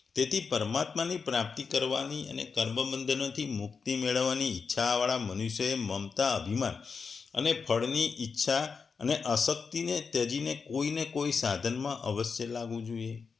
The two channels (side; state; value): right; quieter; 5.3 dB